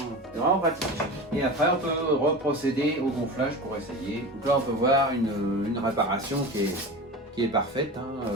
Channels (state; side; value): normal; both; correlation 0.30